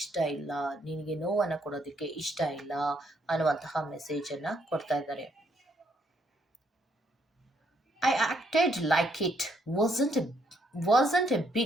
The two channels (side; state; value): both; normal; correlation 0.72